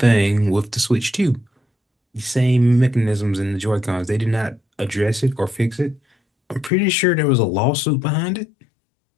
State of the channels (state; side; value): drops out; right; at 6.7 s